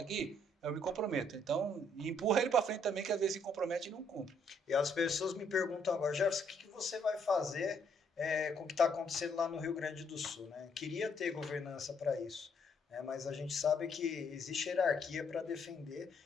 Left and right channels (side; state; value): both; normal; correlation 0.69